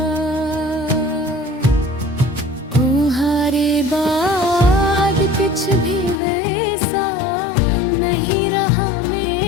तुम्हारे बाद कुछ भी वैसा नहीं रहा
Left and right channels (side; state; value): right; drops out; at 6.2 s